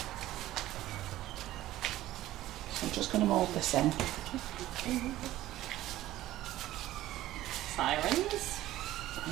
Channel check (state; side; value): quieter; left; 15.0 dB